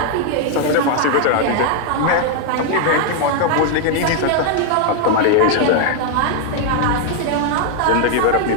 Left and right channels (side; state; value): both; different; correlation 0.00